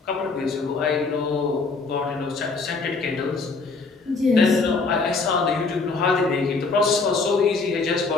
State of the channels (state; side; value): quieter; right; 4.1 dB